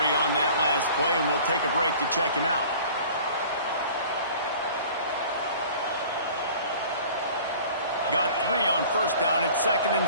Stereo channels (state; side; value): inverted; both; correlation -0.46